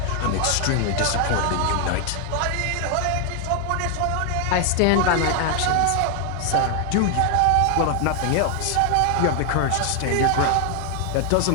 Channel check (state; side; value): different; both; correlation 0.00